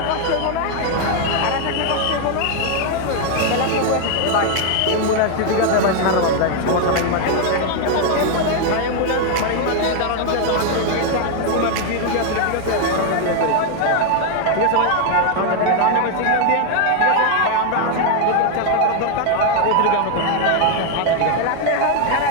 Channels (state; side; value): different; both; correlation 0.00